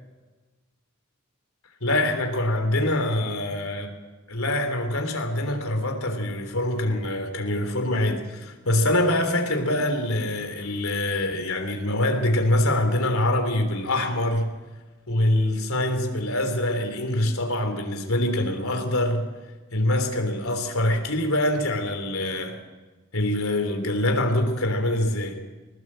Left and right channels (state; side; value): normal; both; correlation 0.31